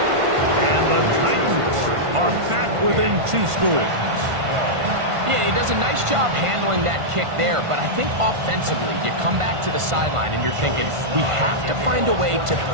And the Titans are back within 2 scores. Yeah, he does a nice job handling that kick there, but I think offensively, you come back to the sideline and you're thinking, we have to find a way to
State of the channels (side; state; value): left; late; 1.5 ms